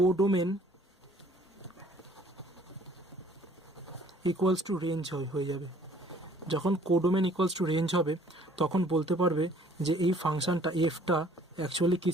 ইকুয়ালস টু রেঞ্জ হয়ে যাবে। যখন কোডোমেন ইকুয়ালস টু রেঞ্জ হবে তখন বলতে পারবে যে এই ফাংশনটা এফটা অ্যাকচুয়ালি কী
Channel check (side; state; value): both; normal; correlation 0.57